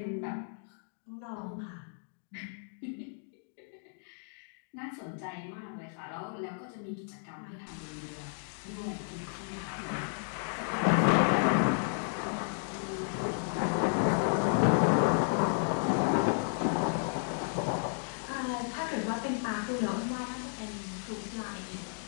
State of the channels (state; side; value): silent; right; digital silence